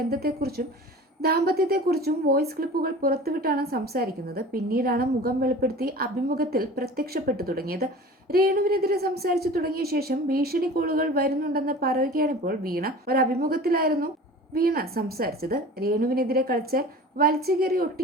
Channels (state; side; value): normal; both; correlation 0.39